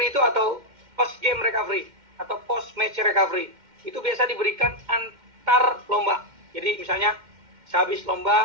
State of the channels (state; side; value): late; left; 2.1 ms